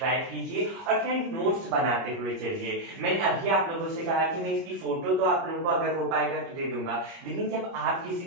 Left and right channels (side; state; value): left; late; 30 ms